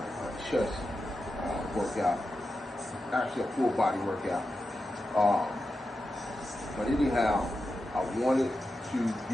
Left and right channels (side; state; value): both; normal; correlation 0.90